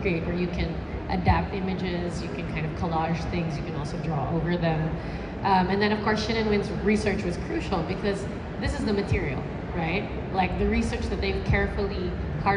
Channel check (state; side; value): identical; both; correlation 1.00